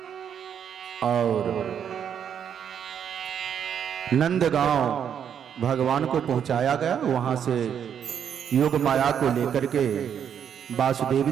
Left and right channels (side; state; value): left; quieter; 8.4 dB